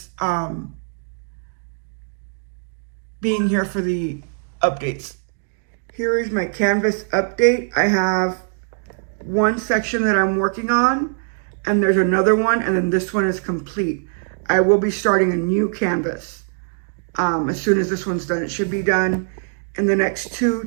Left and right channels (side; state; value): left; silent; 65 dB below the other